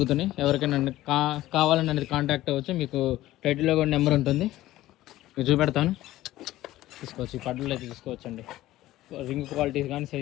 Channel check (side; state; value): right; quieter; 15.6 dB